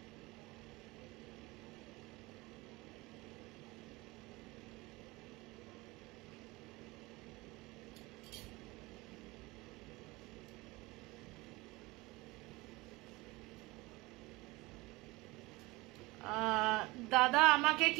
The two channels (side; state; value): left; quieter; 22.2 dB